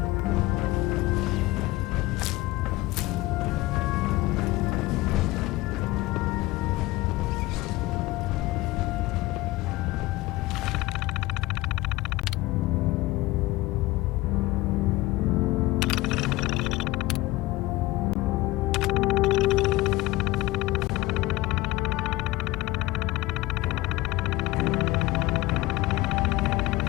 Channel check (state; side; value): quieter; right; 19.1 dB